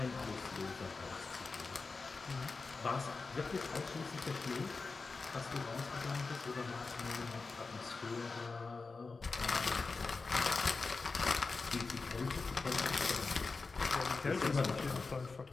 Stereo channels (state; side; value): quieter; right; 4.1 dB